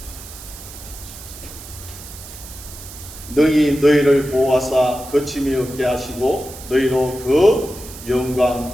능히 너희를 보호하사 거침이 없게 하시고 너희로 그 영광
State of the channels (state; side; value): noise; right; hiss, 15 dB below the sound